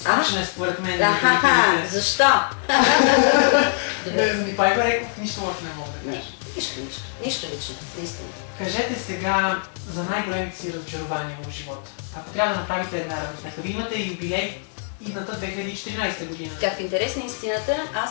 е според мен. Защо? За Николай Бареков нищо лошо не мога да кажа. Нищо лично, наистина. Кажете сега за най-големите си разочарования в живота. Ако трябва да направите една равносметка, вие имате юбилей идната 2014 година. Как в интерес на истината,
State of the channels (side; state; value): right; silent; 63 dB below the other